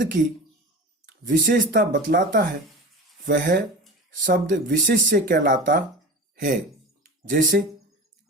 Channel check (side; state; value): both; normal; correlation 0.32